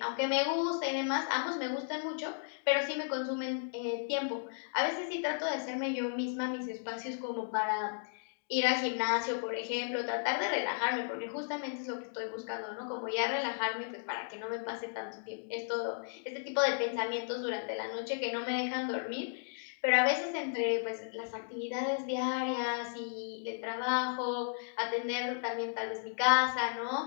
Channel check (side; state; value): right; silent; digital silence